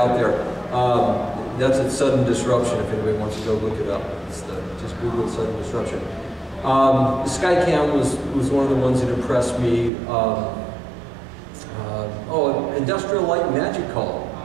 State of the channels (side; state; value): left; drops out; at 9.9 s